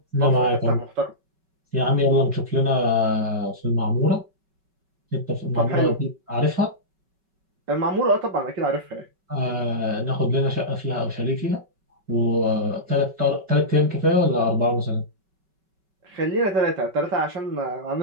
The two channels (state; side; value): late; left; 5.3 ms